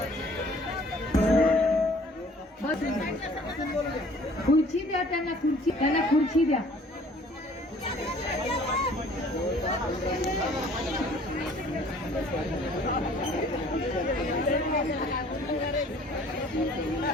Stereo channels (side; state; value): both; normal; correlation 0.54